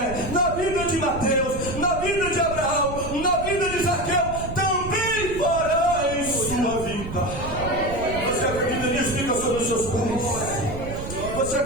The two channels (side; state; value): right; noise; rumble, 9 dB below the sound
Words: na vida de Mateus, na vida de Abraão, na vida de Zaqueu, também fará em sua vida. Você acredita nisso? Fica sobre os seus pés. Você